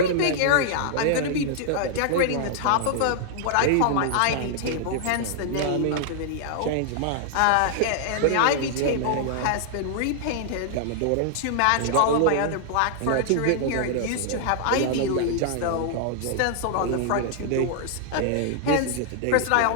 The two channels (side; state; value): both; different; correlation -0.01